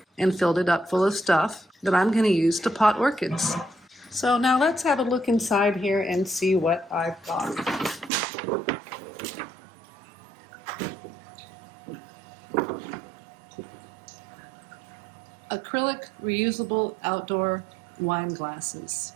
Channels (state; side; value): drops out; left; at 8.1 s